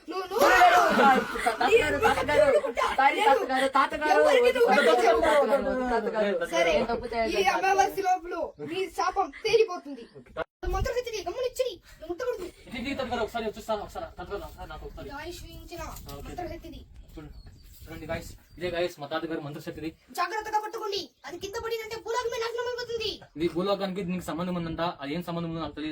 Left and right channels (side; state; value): both; identical; correlation 1.00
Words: అమావాస్య లోపల మీ శాపం తేలిపోతుంది. ఒకసారి చూస్తాను నాకు ఒకసారి ఇదే గాయస్ మా తాతగారు మంత్రశక్తిది. జాగ్రత్తగా పట్టుకోండి, అది కింద పడిందంటే భూలోకమే నాశనం అయిపోతుంది. ఇది భూలోకానికి నీకు సంబంధం ఉందంట, అది ఏం సంబంధం ఉందో నాకు